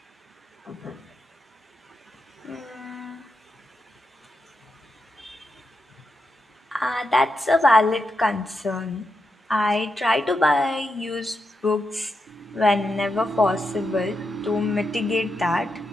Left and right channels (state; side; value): normal; both; correlation 0.86